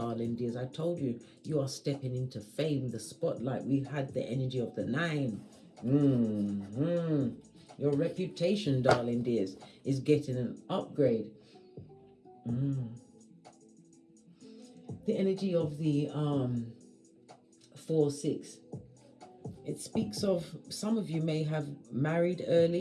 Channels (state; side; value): identical; both; correlation 1.00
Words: dears. I told you, you are stepping into fame, the spotlight. We've had the energy of the 9. Your reputation, darling dears, is getting an upgrade. The energy of the 4-6. It speaks of some of you may have married